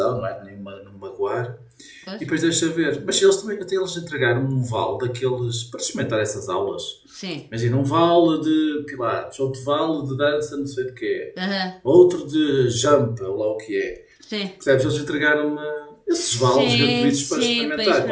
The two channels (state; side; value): identical; both; correlation 1.00